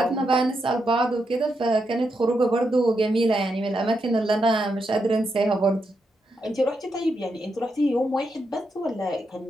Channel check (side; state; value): both; normal; correlation 0.83